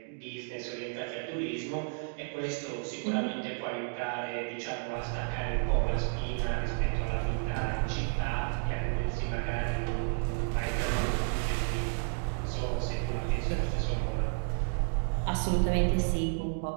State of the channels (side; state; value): left; silent; 55 dB below the other